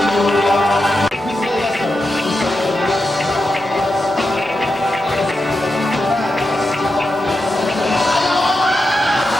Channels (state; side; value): normal; both; correlation 0.88